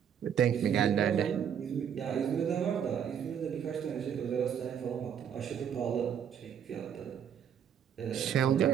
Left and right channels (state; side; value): quieter; left; 8.5 dB